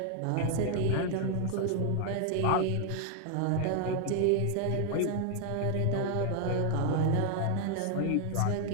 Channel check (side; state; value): both; different; correlation 0.00